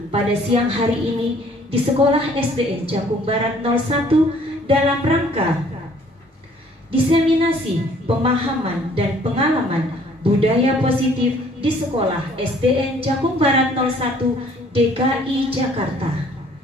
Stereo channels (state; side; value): normal; both; correlation 0.58